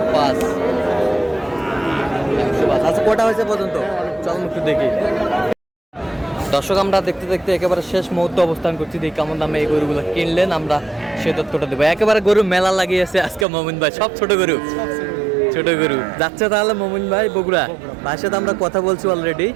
আচ্ছা, কটা হয়েছে পর্যন্ত? চলুন একটু দেখি। দর্শক, আমরা দেখতে দেখতে একেবারে শেষ মুহূর্তে অবস্থান করছি। দেখি কেমন দামে এই গরুগুলো কিনলেন, আমরা সে তথ্যটা দেবো। একেবারে গরু মেলা লাগিয়েছে আজকে মমিন ভাই, সব ছোট গরু। ছোট গরু যাচ্ছে তাহলে মমিন ভাই বগুড়া। ভাইয়ের সাথে আমরা কথা বলছি অলরেডি।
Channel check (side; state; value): left; drops out; at 13.5 s